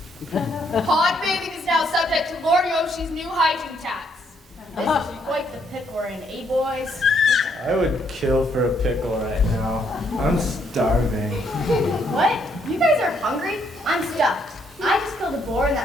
Pond bathing is now subject to Lord Yoshi's new hygiene tax. This is quite the pickle we're in, eh, boys? I would kill for a pickle right now. I'm starving. What? You guys are hungry? I'm stuffed. I just killed a boar in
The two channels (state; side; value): normal; both; correlation 0.71